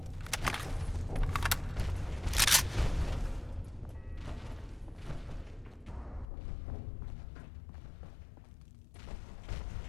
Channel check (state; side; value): drops out; right; at 6.2 s